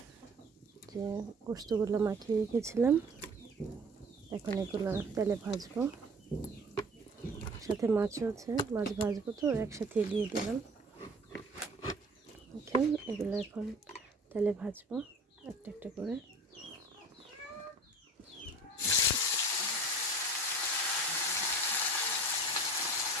যে গোস্তগুলো মাখিয়ে রেখেছিলাম এখন এগুলো তেলে ভাজবো। সাথে মাছও আছে, মাছ ভাজবো তো একসাথে দিয়ে দিলাম। এগুলো এখন তেলে ভাজবো একটা একটা করে।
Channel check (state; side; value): normal; both; correlation 0.44